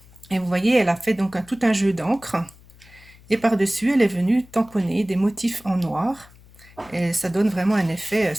et vous voyez, elle a fait donc tout un jeu d'encre. Et par-dessus, elle est venue tamponner des motifs en noir. Et ça donne vraiment un effet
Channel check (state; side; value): noise; left; hum, 25 dB below the sound